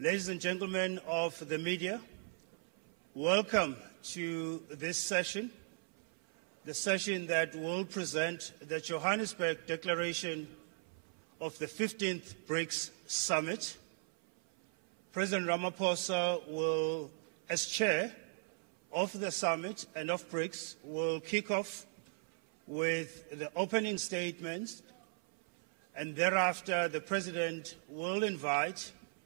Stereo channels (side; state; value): left; silent; 53 dB below the other